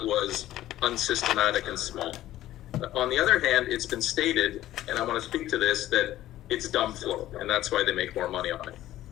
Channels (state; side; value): quieter; right; 14.1 dB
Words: unsystematic and small. On the other hand, it's been stated, and I want to speak to this, that it's dumb flow, and that's why they make more money on it.